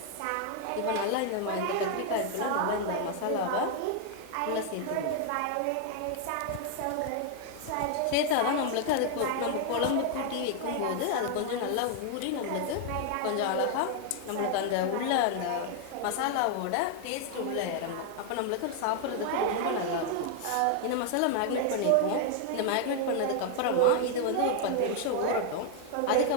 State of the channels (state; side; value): different; both; correlation 0.00